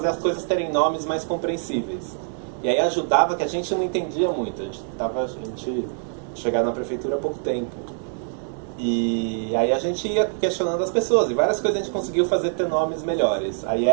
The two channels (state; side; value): silent; left; digital silence